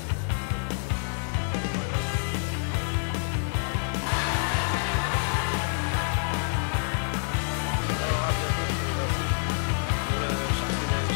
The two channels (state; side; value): silent; right; digital silence